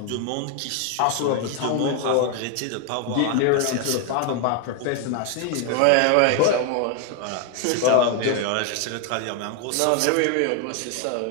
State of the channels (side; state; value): both; different; correlation 0.01